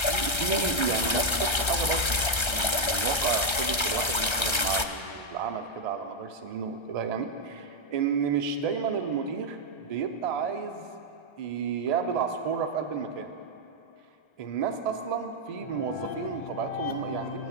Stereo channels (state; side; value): late; right; 1.3 ms